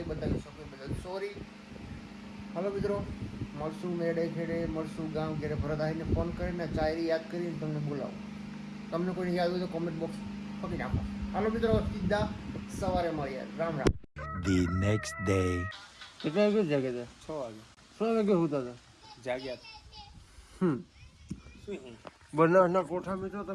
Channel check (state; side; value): identical; both; correlation 1.00